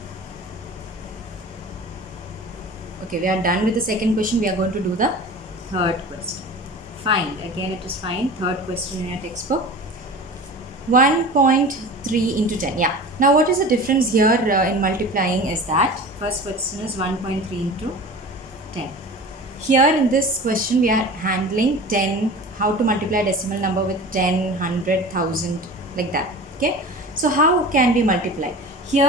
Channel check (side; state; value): both; normal; correlation 0.36